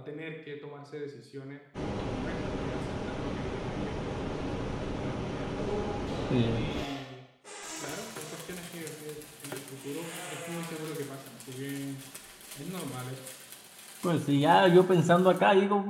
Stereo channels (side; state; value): both; identical; correlation 1.00